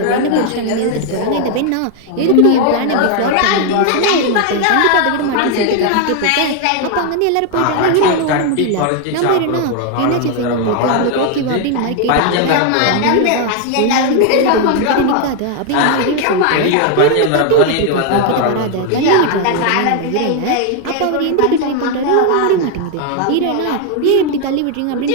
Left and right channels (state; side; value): different; both; correlation 0.01